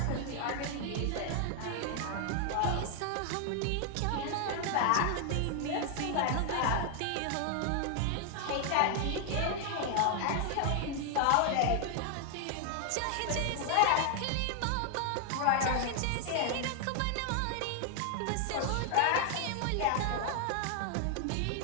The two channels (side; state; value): both; different; correlation 0.00